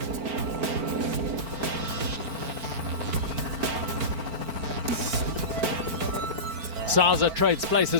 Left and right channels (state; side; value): late; left; 4.4 ms